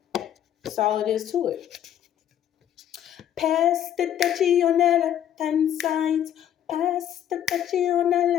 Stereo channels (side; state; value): right; quieter; 10.5 dB